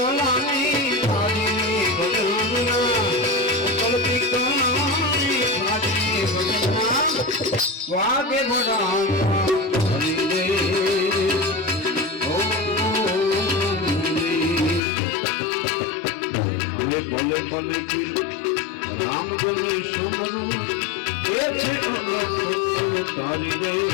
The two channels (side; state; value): right; drops out; at 14.8 s